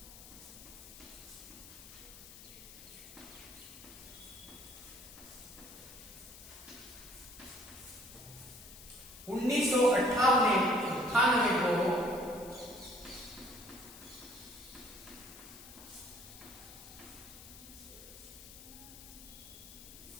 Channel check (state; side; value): noise; left; hiss, 16 dB below the sound